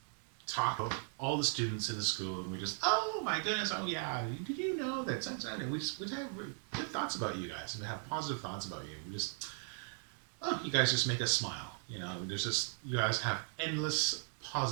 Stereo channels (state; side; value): silent; left; 53 dB below the other